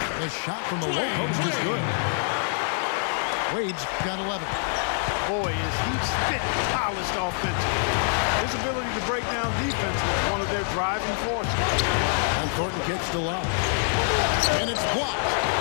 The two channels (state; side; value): silent; right; 60 dB below the other